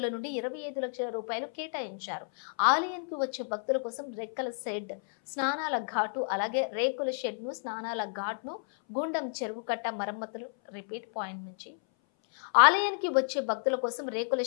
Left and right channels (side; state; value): right; silent; 57 dB below the other